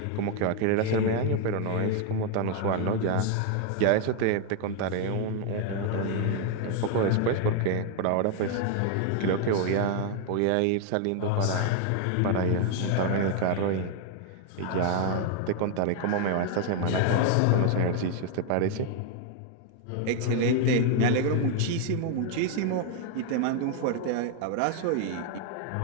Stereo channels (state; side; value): different; both; correlation 0.01